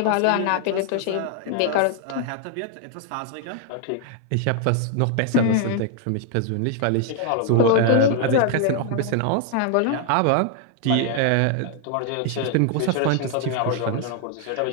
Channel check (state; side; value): different; both; correlation 0.00